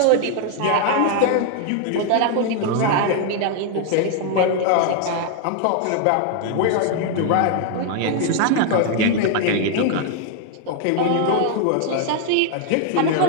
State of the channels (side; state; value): both; different; correlation 0.00